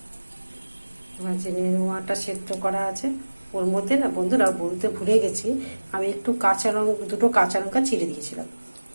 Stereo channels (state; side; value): inverted; both; correlation -1.00